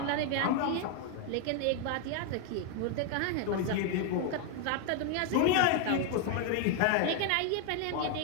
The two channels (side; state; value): both; different; correlation 0.01